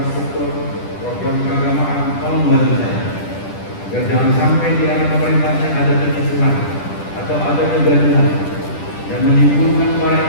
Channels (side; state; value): right; late; 10 ms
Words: program keagamaan, tolong membantu saya. Agar jangan sampai di era pemerintahan ada kekisuhan atau ada kegaduhan yang menimbulkan